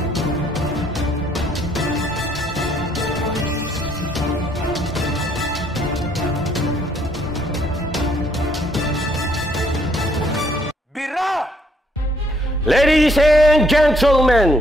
Bira! Ladies and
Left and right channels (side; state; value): both; normal; correlation 0.67